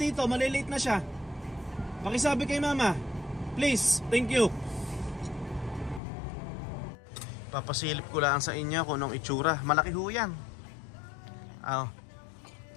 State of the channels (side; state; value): right; drops out; at 6.0 s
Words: malilate na siya. Pakisabi kay mama, please, thank you. Papasilip ko lang sa inyo kung anong itsura. Malaki ho yan.